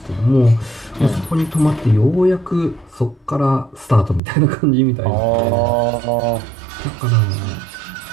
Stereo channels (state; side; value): drops out; left; at 4.2 s